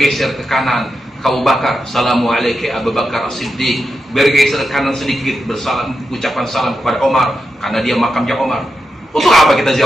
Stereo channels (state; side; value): normal; both; correlation 0.88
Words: ke kanan ke Abu Bakar, Assalamualaikum Abu Bakar As-Siddiq. Bergeser ke kanan sedikit, bersalam, ucapan salam kepada Omar, karena dia makamnya Omar. Untuk apa kita